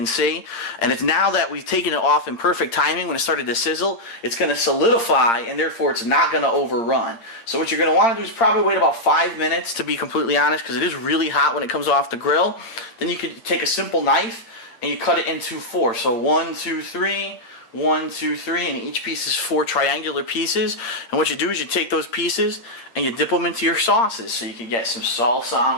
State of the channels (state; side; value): late; right; 8.7 ms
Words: see. And it's now that we've taken it off in perfect timing when it started to sizzle, it's going to solidify, and therefore it's not going to overrun. So what you're going to want to do is probably wait about 5 minutes, to be completely honest, because it is really hot when it comes off the grill. Then you could take a simple knife, and you cut it into 4. So 1, 2, 3... 1, 2, 3, and each piece is 4 triangular pieces. And what you do is you take those pieces and you dip them into your sauces. So you can get some salsa